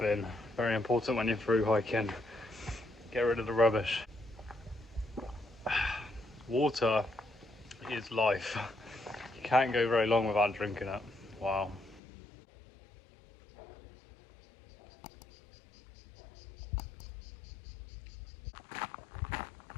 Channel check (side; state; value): right; drops out; at 12.0 s